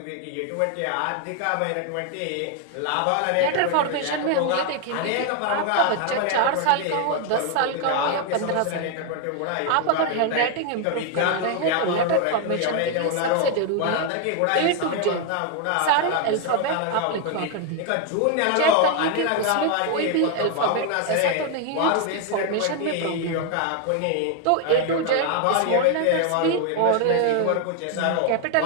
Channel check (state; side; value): different; both; correlation 0.01